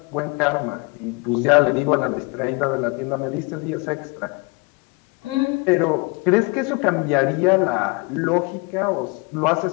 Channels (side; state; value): right; quieter; 28.8 dB